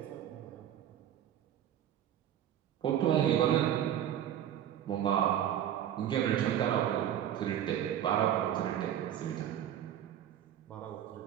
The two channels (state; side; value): quieter; left; 10.6 dB